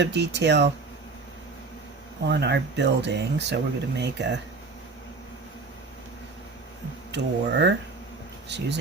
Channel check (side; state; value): left; quieter; 4.0 dB